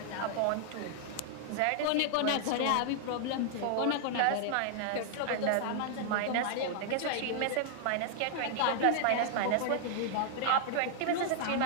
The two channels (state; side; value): different; both; correlation -0.01